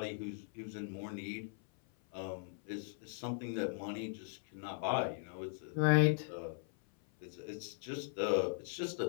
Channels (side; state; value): right; silent; 52 dB below the other